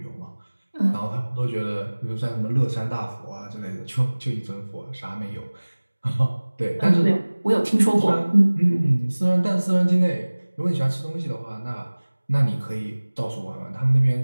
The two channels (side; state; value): both; inverted; correlation -1.00